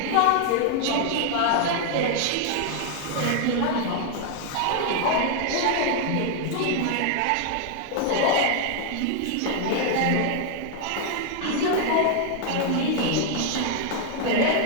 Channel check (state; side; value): different; both; correlation 0.00